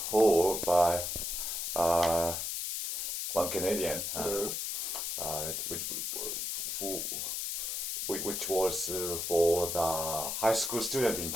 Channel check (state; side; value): noise; left; hiss, 2 dB below the sound